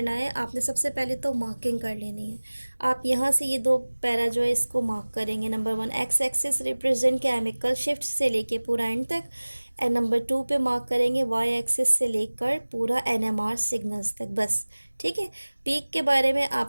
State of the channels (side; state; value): both; inverted; correlation -1.00